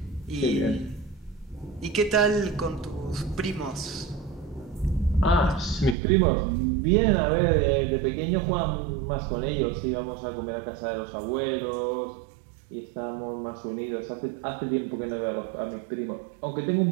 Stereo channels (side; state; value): left; drops out; at 6.0 s